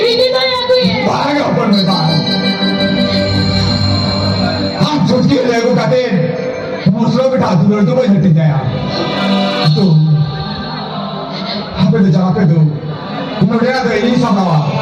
হিদি দয়া কইয়ে भाग अपन में बात हम छुटकी लेगो कहते मुसलो बिठा दूर तो वही हट जाया तो हमें तो जगह पे दो मुझे तो यही समझा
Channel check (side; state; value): both; identical; correlation 1.00